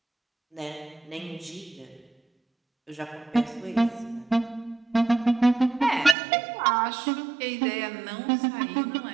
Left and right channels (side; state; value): left; drops out; at 6.2 s